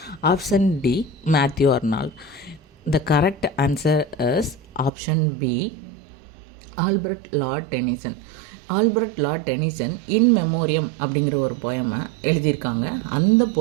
option D Matthew Arnold. The correct answer is option B Albert Lord Denison. Albert Lord Denison in memoriam அப்படிங்கிற ஒரு போயமை எழுதியிருக்காங்க. அந்த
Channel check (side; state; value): left; drops out; at 4.9 s